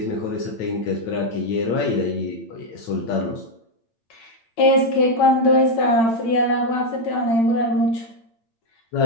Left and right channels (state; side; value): late; right; 8.8 ms